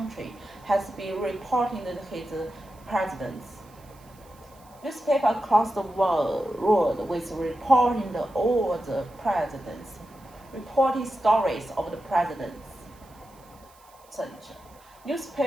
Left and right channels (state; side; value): noise; right; hiss, 28 dB below the sound